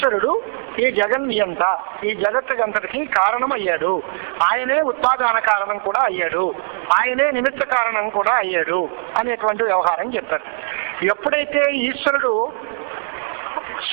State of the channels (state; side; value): silent; left; digital silence